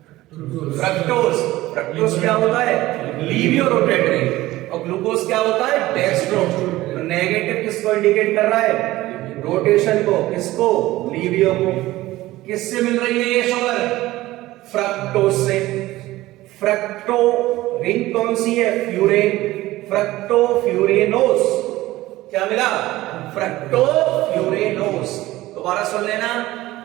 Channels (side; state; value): left; quieter; 17.2 dB